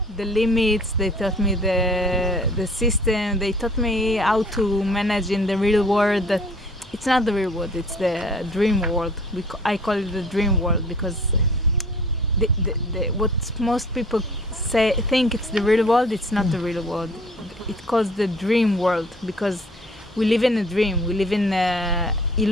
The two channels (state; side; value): normal; both; correlation 0.52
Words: the limits, they taught me the system, they taught me how to manage in the real world. That it's not the real world, it's the dream world. I call it the dream world because what most people think it's the real world, it's not the real world. It's called the dream world because we live in a dream, we live in